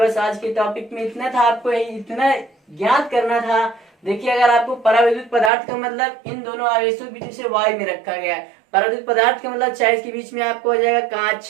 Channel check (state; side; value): drops out; left; at 5.5 s